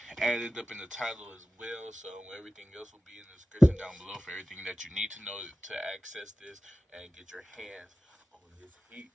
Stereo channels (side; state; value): both; normal; correlation 0.95